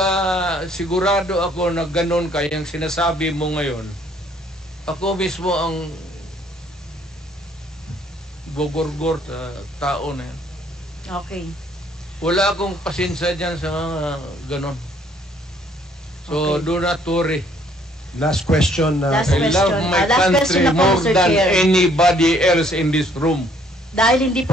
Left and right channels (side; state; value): both; normal; correlation 0.63